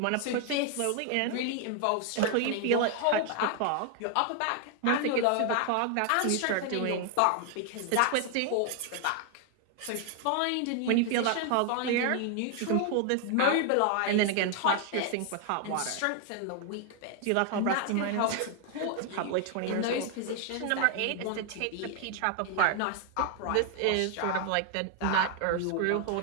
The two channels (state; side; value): different; both; correlation 0.00